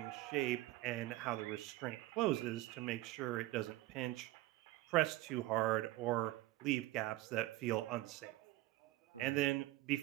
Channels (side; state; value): left; quieter; 17.2 dB